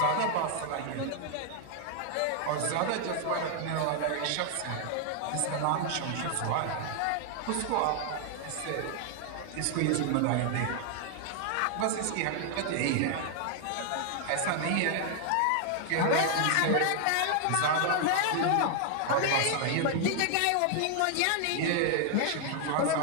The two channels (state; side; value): different; both; correlation 0.00